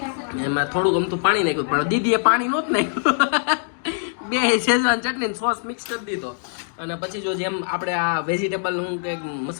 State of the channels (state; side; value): silent; right; digital silence